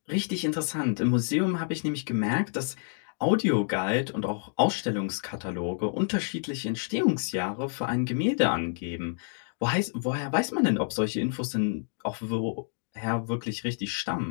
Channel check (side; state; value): right; silent; 59 dB below the other